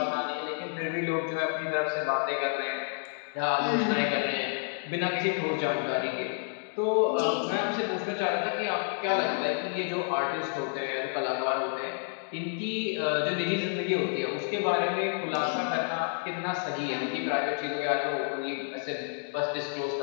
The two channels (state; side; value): silent; right; 58 dB below the other